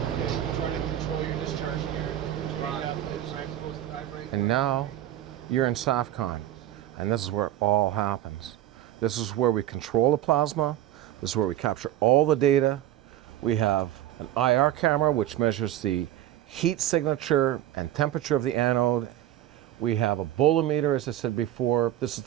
okay. Try to control your discharge here. And now you're in SAFCON, and this is where it all happens. This is where we control the plasma. This is where we capture all the data. We have an IR camera, which measures the heat signature and temperature of the anode. We have a bolometer, as I said before. This is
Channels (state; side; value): quieter; left; 12.7 dB